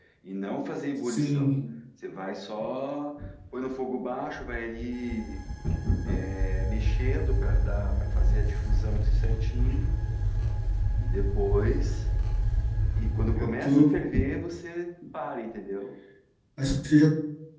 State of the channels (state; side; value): identical; both; correlation 1.00